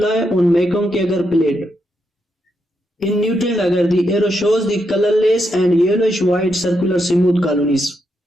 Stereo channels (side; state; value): both; normal; correlation 0.81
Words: on mekong agar plate. In neutral agar, the arrow shows the colorless and yellowish white circular smooth colonies.